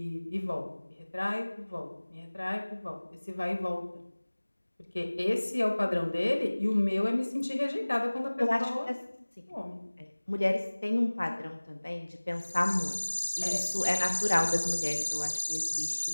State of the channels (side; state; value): both; inverted; correlation -1.00